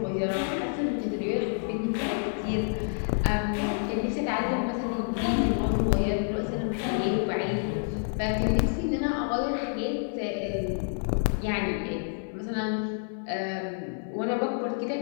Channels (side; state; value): right; silent; 57 dB below the other